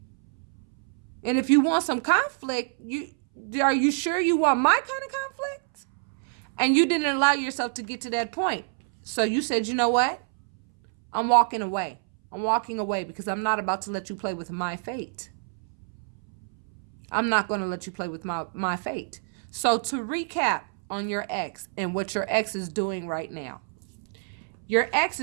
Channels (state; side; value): silent; left; 60 dB below the other